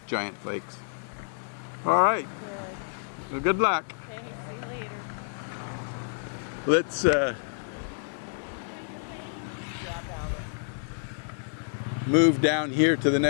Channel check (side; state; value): right; silent; digital silence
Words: giant flakes. All right. Good. Well, good luck. Okay, see you later. Let's move down here to the